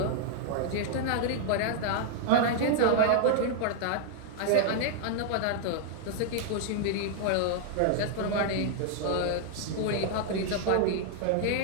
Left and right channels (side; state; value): both; different; correlation -0.01